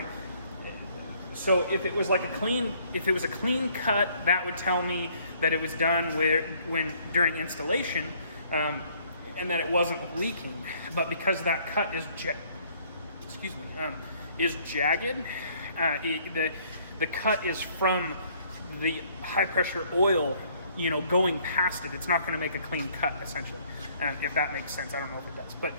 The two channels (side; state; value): both; inverted; correlation -0.62